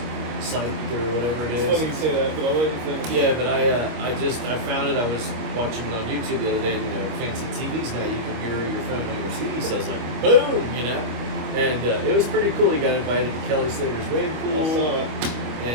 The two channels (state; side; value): late; left; 25 ms